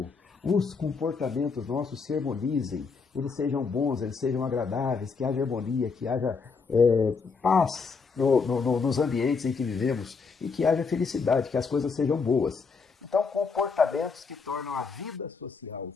os comportamentos nossos se harmonizem, eles sejam bons, eles sejam agradáveis, que haja harmonia, que haja paz nos ambientes em que vivemos e que haja felicidade, que as coisas sejam boas. Então, comportamentos que tornam a vida social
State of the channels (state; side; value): quieter; right; 5.0 dB